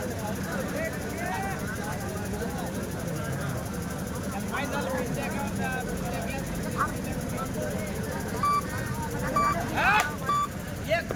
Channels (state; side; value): identical; both; correlation 1.00